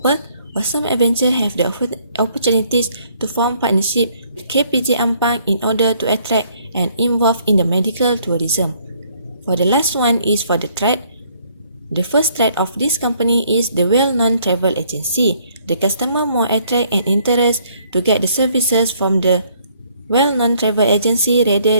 Awesome Adventure have the opportunities to form partnership with KPJ Ampang in order to attract and involve in the medical tourism. For the last one is for the threat. The first threat of this company is the well-known travel agency. The customer more attract and interest to get the services from the well-known travel agency rather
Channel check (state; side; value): inverted; both; correlation -0.65